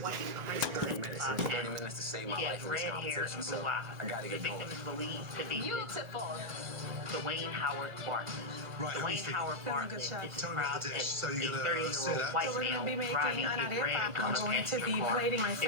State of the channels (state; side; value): late; left; 1.9 ms